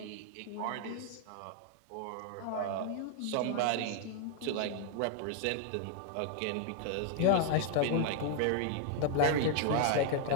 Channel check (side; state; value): both; different; correlation 0.00